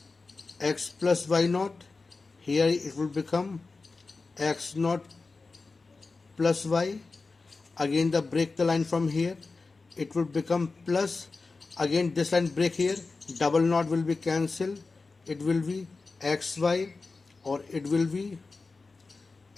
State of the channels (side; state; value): right; quieter; 3.9 dB